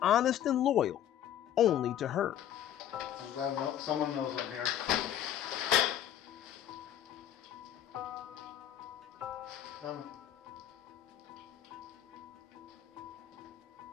honest and loyal, only to her. I'm glad someone knows I'm here. Come.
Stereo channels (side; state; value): right; quieter; 11.0 dB